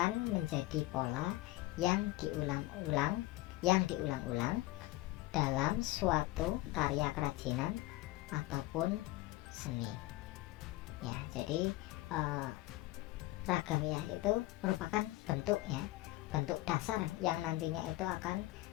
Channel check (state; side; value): quieter; right; 18.2 dB